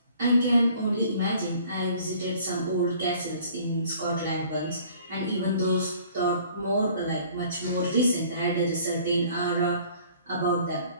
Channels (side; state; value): both; inverted; correlation -0.53